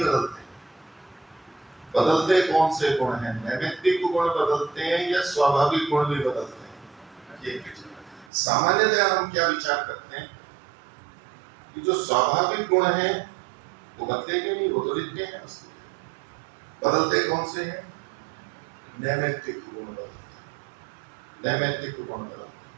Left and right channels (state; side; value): drops out; left; at 8.3 s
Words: बदलते कौन से गुण हैं? नैमित्तिक गुण बदलते हैं या स्वाभाविक गुण भी बदलते हैं? ये सामान्यतः हम क्या विचार करते हैं कि जो स्वाभाविक गुण हैं वो बदलेंगे नहीं, वो तो नित्य हैं। बदलते कौन से हैं? नैमित्तिक गुण बदलते, नैमित्तिक गुण